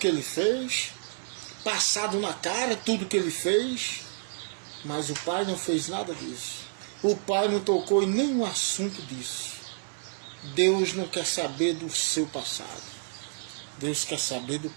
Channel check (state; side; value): silent; left; digital silence